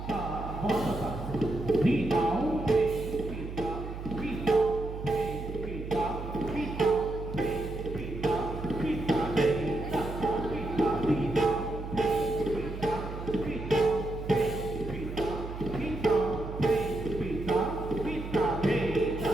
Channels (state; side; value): noise; right; hum, 8 dB below the sound